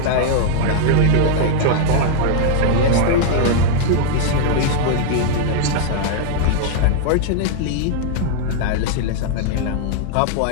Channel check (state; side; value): different; both; correlation -0.01